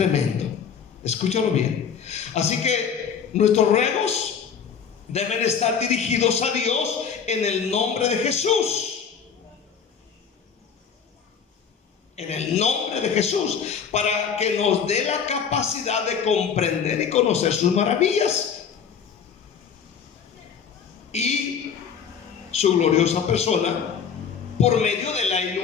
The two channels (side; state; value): right; quieter; 6.9 dB